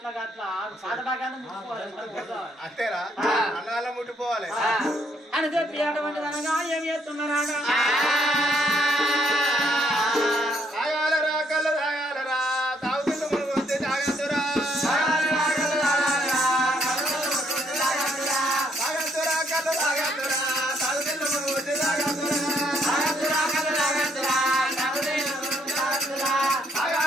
అంతేరా అన్నగాళ్ళ ముట్టిపోవాలి అని చెప్పి అటువంటి అనగా ఏమి చేస్తున్నారా తాగాలరా కళ్ళు తాగాలరా తాగుతున్న మునుగు వస్తే తాగద్దురా తాగద్దురా కళ్ళు తాగద్దురా తాగుతున్న మునుగు వస్తే తాగద్దురా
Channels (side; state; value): both; normal; correlation 0.71